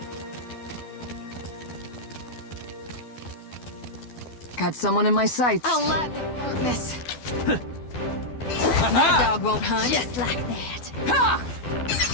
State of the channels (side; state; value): right; late; 12 ms